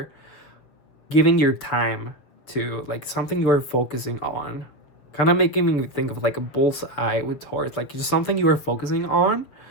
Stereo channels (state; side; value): late; right; 7.1 ms